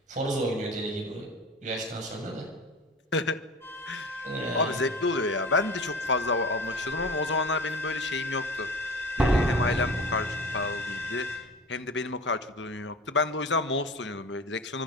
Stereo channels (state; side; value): normal; both; correlation 0.35